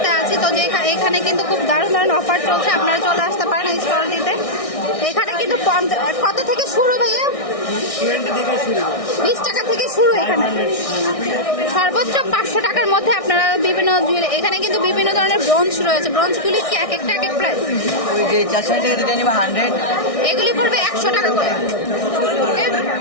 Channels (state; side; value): late; right; 1.6 ms